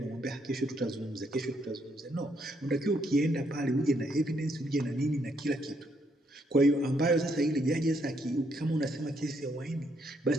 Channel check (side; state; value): both; normal; correlation 0.74